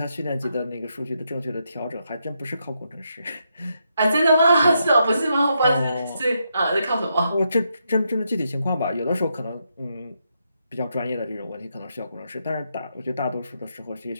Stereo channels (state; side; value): inverted; both; correlation -0.80